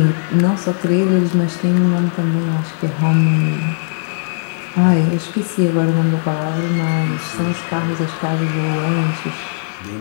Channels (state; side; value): silent; right; digital silence